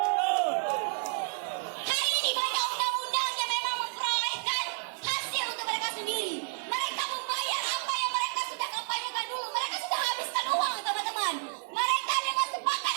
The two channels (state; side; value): silent; left; digital silence